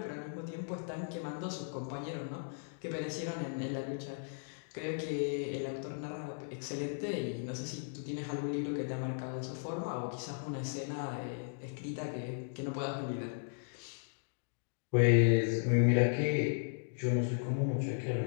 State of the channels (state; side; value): silent; right; digital silence